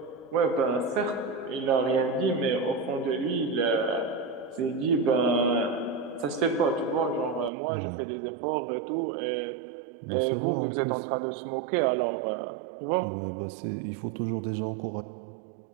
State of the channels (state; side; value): drops out; left; at 7.5 s